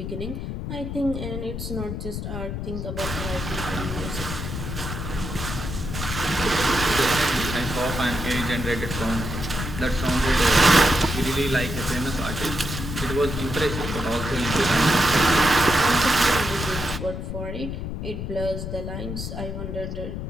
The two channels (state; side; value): noise; left; rumble, 5 dB below the sound